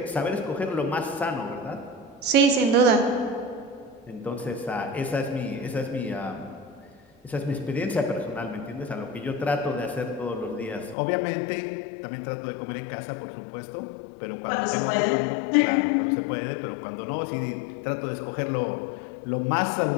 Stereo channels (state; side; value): drops out; right; at 11.0 s